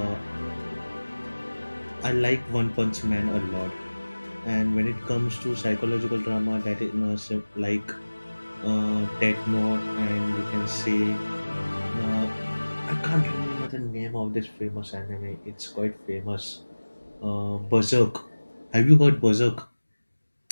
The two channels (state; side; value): inverted; both; correlation -1.00